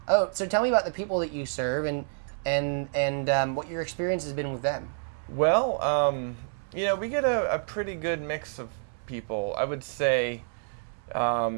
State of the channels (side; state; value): left; silent; 59 dB below the other